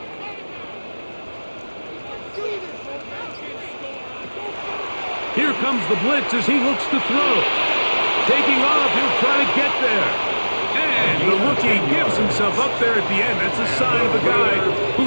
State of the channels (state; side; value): inverted; both; correlation -1.00